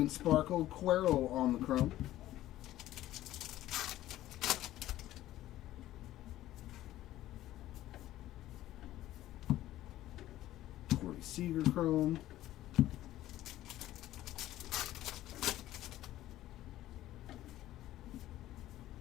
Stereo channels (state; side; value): quieter; right; 14.4 dB